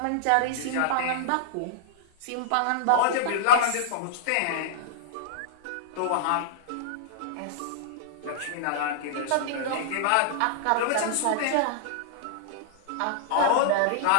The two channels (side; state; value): both; different; correlation -0.01